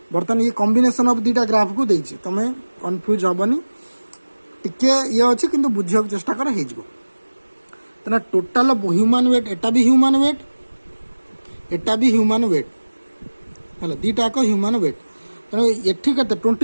बर्तन ये कॉम्बिनेशन ऑफ दीटा ग्राफ को देछि तमे कंफ्यूज हबनी टिके ये अछि किंतु बुझियो चेष्टा कर हे जबो। तना टोटल ह्यूमन वेट एटा भी ह्यूमन वेट एटा भी ह्यूमन वेट हैला दीटा को ह्यूमन वेट तना एठी केते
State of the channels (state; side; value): inverted; both; correlation -1.00